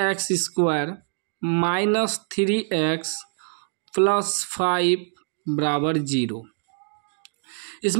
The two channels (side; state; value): left; silent; digital silence